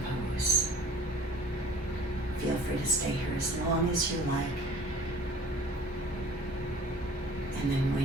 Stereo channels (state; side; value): normal; both; correlation 0.48